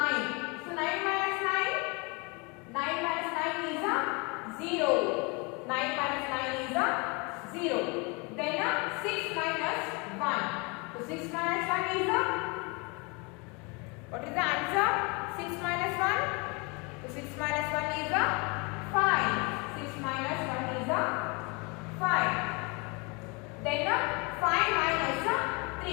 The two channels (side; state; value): right; quieter; 29.8 dB